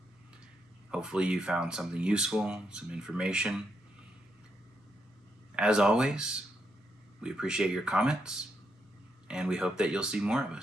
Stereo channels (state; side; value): normal; both; correlation 0.80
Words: Hopefully you found something useful, some information. As always, we appreciate your comments, and we hope that you'll see more of